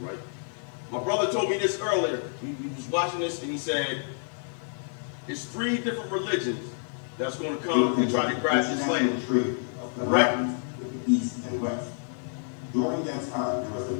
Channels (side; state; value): right; silent; digital silence